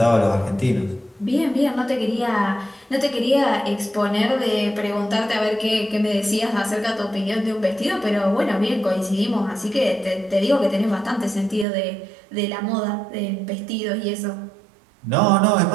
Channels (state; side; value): drops out; left; at 11.7 s